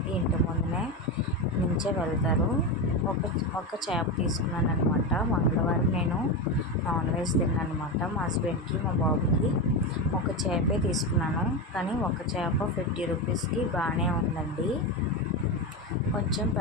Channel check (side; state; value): both; normal; correlation 0.16